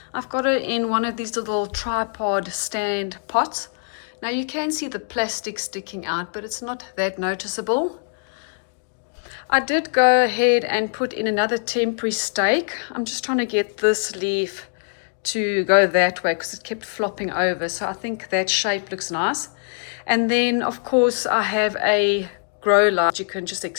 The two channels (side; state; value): right; silent; digital silence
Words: I've got her in one of these little tripod stand pots. Now you can see the plastic sticking out, but it's not that noticeable. I did go ahead and put in another temporary stake. I'm just trying to get this leaf to go that way because it kept flopping over. So I think that shape looks nice. And then of course I have a grow light you can just